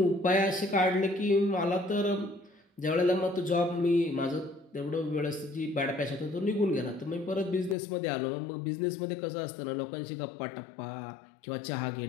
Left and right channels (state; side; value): drops out; right; at 7.8 s